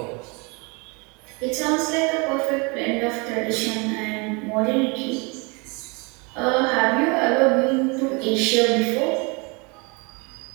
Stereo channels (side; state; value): left; quieter; 29.9 dB